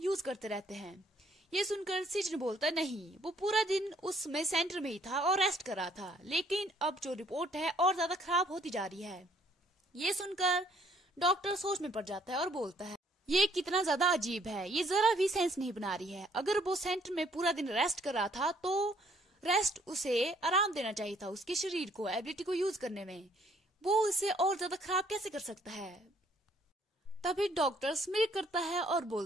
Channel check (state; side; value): normal; both; correlation 0.64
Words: करते रहते हैं। ये सुनकर सीजन बोलता है, नहीं, वो पूरा दिन उसमें सेंटर में ही था और रेस्ट कर रहा था, लेकिन अब जो रिपोर्ट है और ज्यादा खराब होती जा रही है। ये सुनकर डॉक्टर सोच में पड़ जाता है और बोलता है, ये कितना ज्यादा अजीब है, ये जरा भी सेंस नहीं बना रही है। अगर वो सेंटर में पूरा दिन रेस्ट कर रहा था तो रेस्ट उसे आराम देना चाहिए था, उसके शरीर को एबिलिटी को यूज करने में। वो उसे और ज्यादा खराब कैसे कर सकता है? तभी डॉक्टर स्मिर करता है और